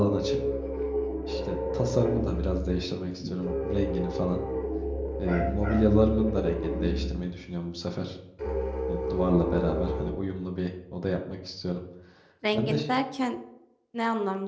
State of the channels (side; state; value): both; identical; correlation 1.00